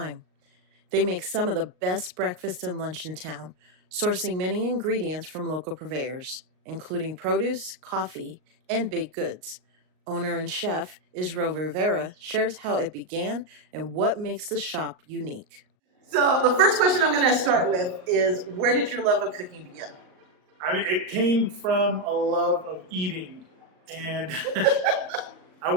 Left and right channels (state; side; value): late; left; 38 ms